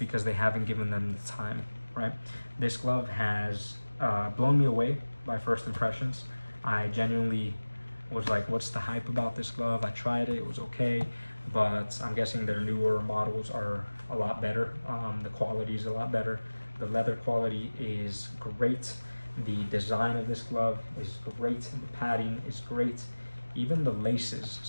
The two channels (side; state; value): both; inverted; correlation -1.00